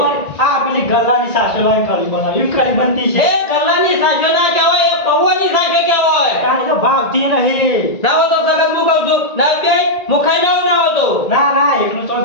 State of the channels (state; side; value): late; right; 1.9 ms